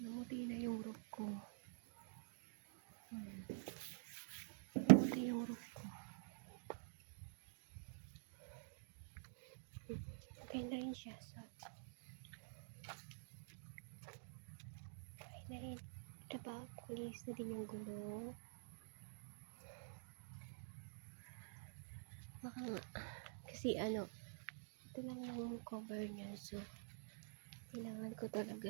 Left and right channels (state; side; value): silent; left; digital silence